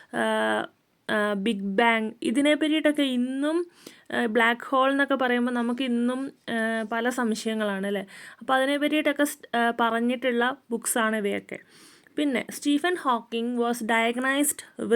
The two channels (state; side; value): identical; both; correlation 1.00